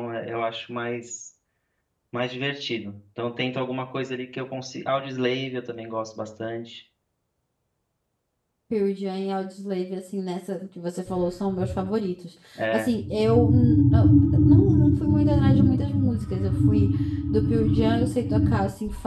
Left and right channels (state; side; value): identical; both; correlation 1.00